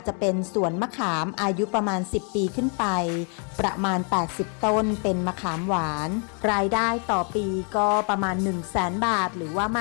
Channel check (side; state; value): right; quieter; 39.2 dB